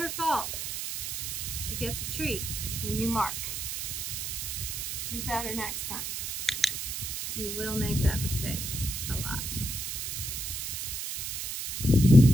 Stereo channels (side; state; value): right; noise; hiss, 4 dB below the sound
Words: fault. She gets a treat when you mark. Do better next time. You will make that mistake a lot.